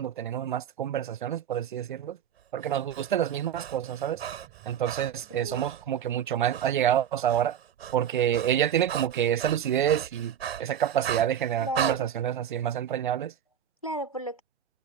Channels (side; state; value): left; quieter; 9.5 dB